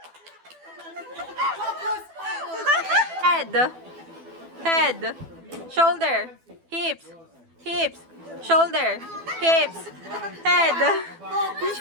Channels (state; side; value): late; left; 12 ms